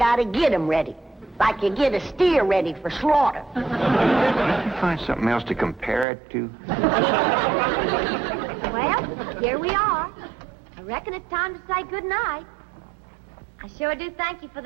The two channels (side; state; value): left; drops out; at 6.1 s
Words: get him ready. Like you get a steer ready for slaughter. Can't you find something else to compare it to? Well, here we are. I reckon it's time to say goodnight. I sure do thank you for